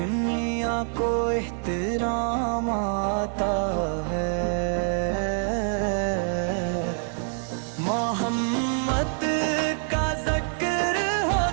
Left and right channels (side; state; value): left; silent; 61 dB below the other